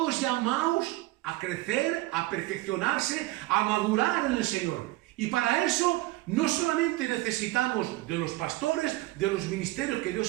llamados a crecer, a perfeccionarse, a madurar en el Señor. Y para eso no solamente necesitamos de los pastores, de los ministerios que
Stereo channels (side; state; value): left; quieter; 18.9 dB